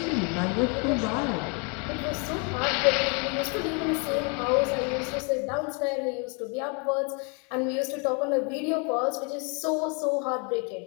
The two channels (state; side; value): quieter; right; 35.1 dB